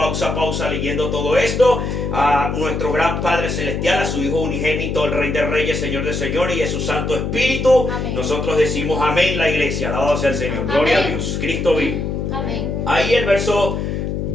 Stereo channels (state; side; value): noise; left; hum, 2 dB below the sound